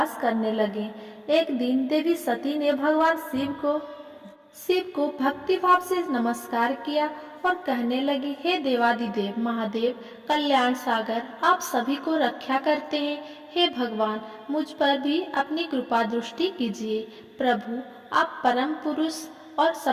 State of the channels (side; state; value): both; identical; correlation 1.00